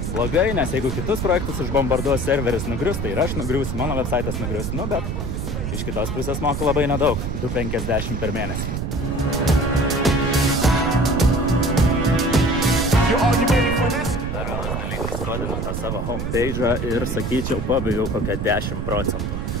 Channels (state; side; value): noise; right; rumble, 3 dB below the sound